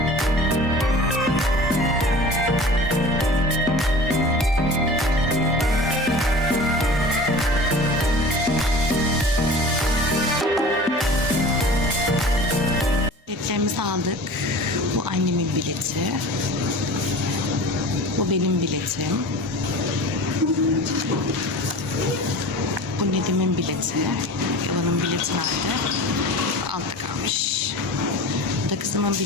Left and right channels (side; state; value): both; normal; correlation 0.38